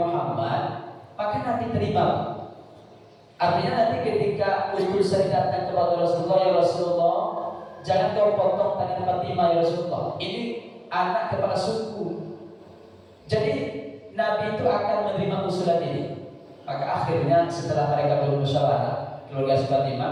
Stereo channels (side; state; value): both; identical; correlation 1.00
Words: maka nanti terima. Artinya nanti ketika utusan datang kepada Rasulullah, ya Rasulullah, jangan kau potong tangan Fatimah ya Rasulullah, ini anak kepala suku. Jadi Nabi itu akan menerima usulan ini. Maka akhirnya setelah mereka bermusyawarah, keluarga Fatimah,